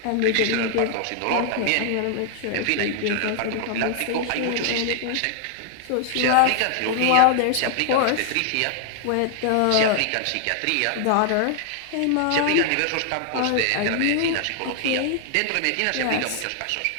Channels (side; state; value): both; different; correlation 0.00